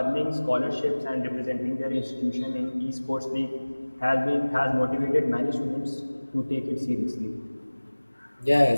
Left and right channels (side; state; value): both; inverted; correlation -1.00